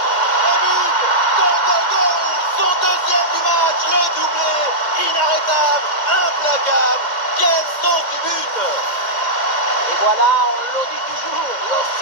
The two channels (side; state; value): right; late; 2.1 ms